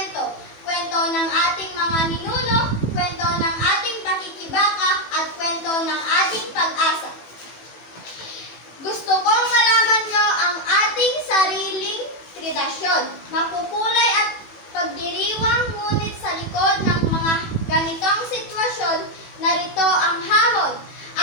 Kwento ng ating mga ninuno, kwento ng ating pakikibaka, at kwento ng ating pag-asa. Gusto kong malaman nyo ang ating sariling tradisyon. Makukulay at pagdiriwang, ngunit sa likod ng mga ganitong sitwasyon, narito ang hamon.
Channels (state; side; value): late; right; 18 ms